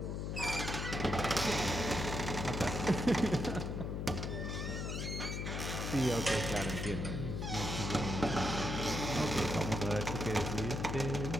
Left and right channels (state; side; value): noise; left; hum, 3 dB below the sound